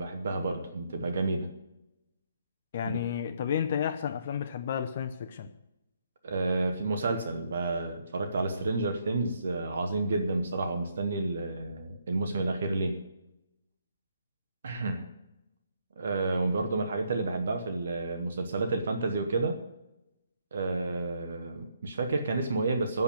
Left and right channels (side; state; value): both; inverted; correlation -0.73